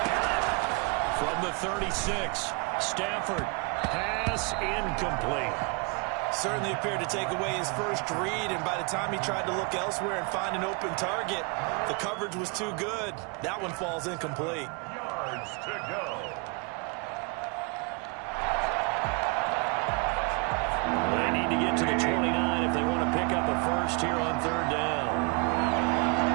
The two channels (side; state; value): left; quieter; 32.5 dB